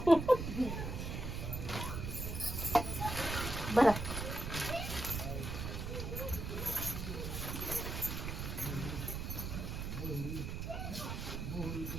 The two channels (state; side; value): noise; right; rumble, 4 dB below the sound